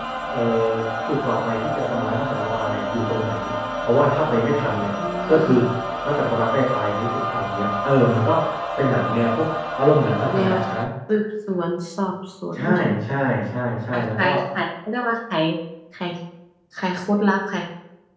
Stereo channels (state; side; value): identical; both; correlation 1.00